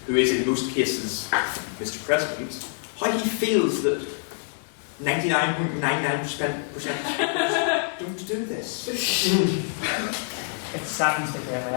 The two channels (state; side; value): silent; right; digital silence